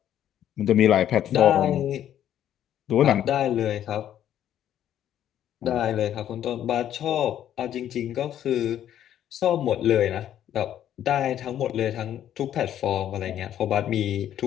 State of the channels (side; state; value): right; quieter; 10.9 dB